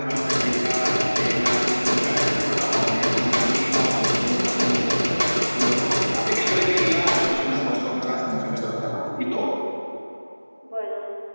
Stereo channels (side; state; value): both; inverted; correlation -1.00